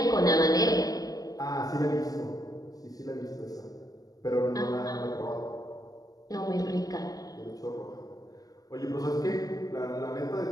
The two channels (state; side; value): late; right; 0.18 ms